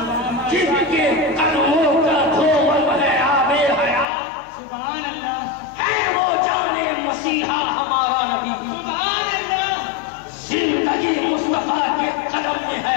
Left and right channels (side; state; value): right; drops out; at 4.0 s